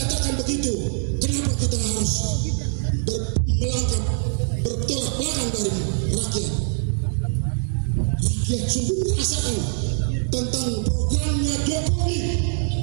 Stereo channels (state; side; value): silent; left; digital silence